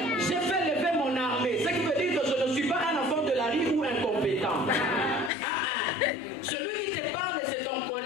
j'ai fait lever mon armée. Ce qui veut dire que je ne suis pas un enfant de la rue ou incompétent. Celui qui te parle, c'est ton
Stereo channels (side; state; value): right; drops out; at 5.3 s